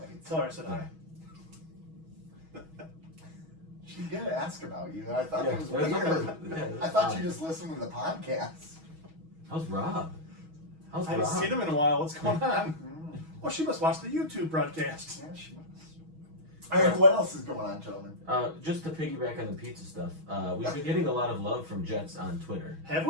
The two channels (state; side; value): late; left; 6.2 ms